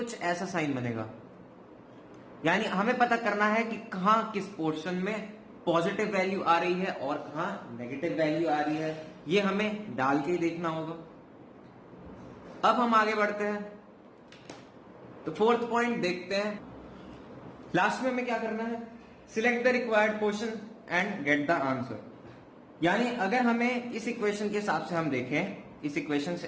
ऐसा साइन बनेगा। यानी हमें पता करना है कि कहां किस पोर्शन में पॉजिटिव वैल्यू आ रही है और कहां नेगेटिव वैल्यू आ रही है, ये हमें डाल के ही देखना होगा। अब हम आगे बढ़ते हैं, तो फोर्थ पॉइंट देखते हैं। लास्ट में हमें क्या करना है, select the required portion and get the answer. यानी अगर हमें इस इक्वेशन के हिसाब से हम देखें, इस इक्वेशन के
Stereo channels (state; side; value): identical; both; correlation 1.00